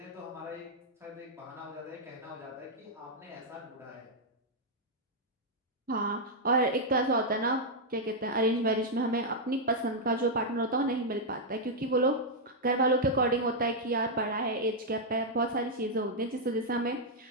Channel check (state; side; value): normal; both; correlation -0.04